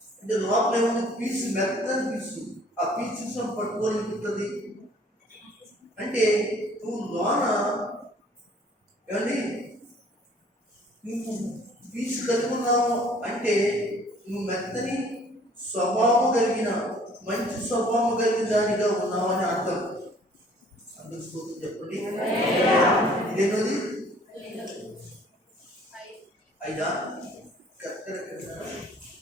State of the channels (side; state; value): both; normal; correlation 0.56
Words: అంటే లోపల ఏముంది? పీసు, మెత్తని పీసు. ఆ పీసు పట్టుకోలేకుంటుంది. అంటే నువ్వు లోన ఏమండి నువ్వు పీసు కలిగి ఉన్నావు అంటే నువ్వు మెత్తని స్వభావం కలిగిన, మంచి స్వభావం కలిగిన దానిగా ఉన్నావు అని అర్థం. అందుకు స్తోత్రం చెప్పండి. ఇదేనది 5 కరెక్ట్.